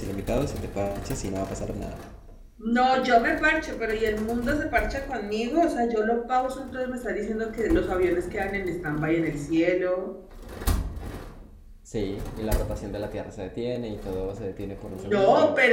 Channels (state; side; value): identical; both; correlation 1.00